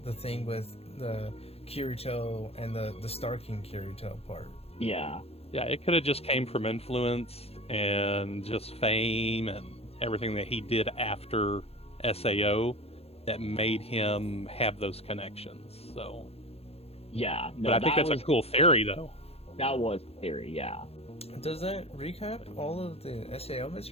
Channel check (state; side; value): late; right; 0.29 ms